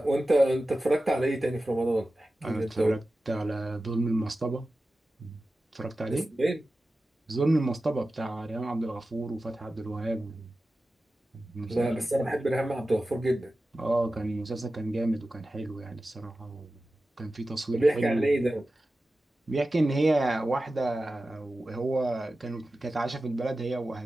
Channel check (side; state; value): both; normal; correlation 0.94